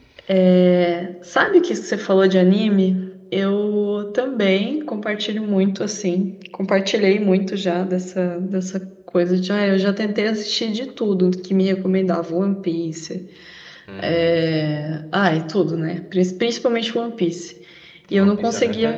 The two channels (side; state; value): both; identical; correlation 1.00